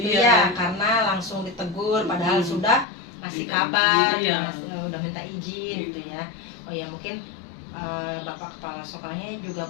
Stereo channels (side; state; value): right; drops out; at 2.9 s